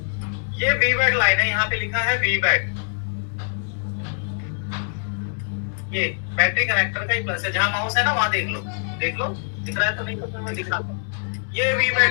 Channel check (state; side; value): silent; right; digital silence